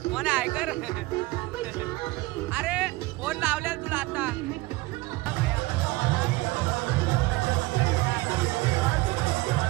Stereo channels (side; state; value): left; quieter; 21.1 dB